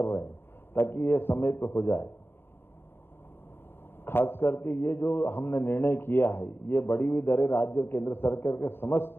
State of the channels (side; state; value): right; late; 0.11 ms